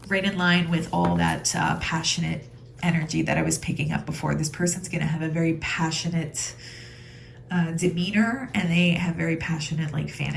right in line with all that passionate energy that I was picking up before. This person's going to have a very passionate demeanor, and they have very passionate like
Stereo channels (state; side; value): identical; both; correlation 1.00